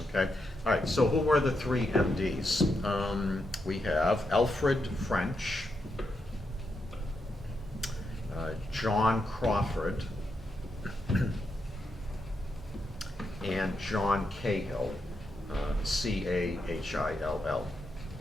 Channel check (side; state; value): both; normal; correlation 0.83